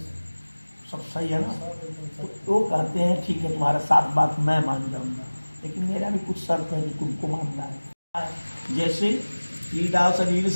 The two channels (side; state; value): both; inverted; correlation -1.00